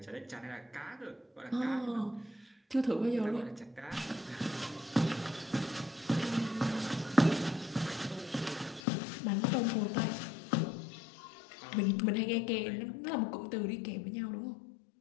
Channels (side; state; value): right; drops out; at 8.8 s